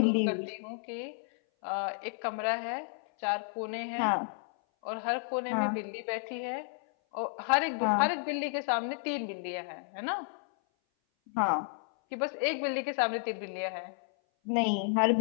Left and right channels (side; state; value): right; silent; 56 dB below the other